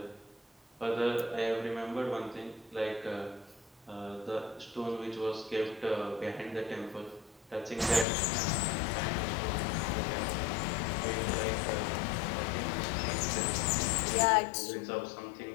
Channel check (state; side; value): drops out; right; at 8.1 s